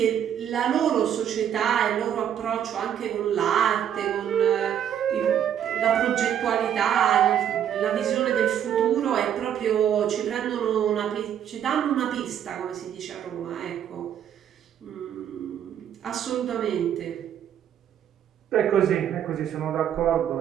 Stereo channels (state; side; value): quieter; left; 9.7 dB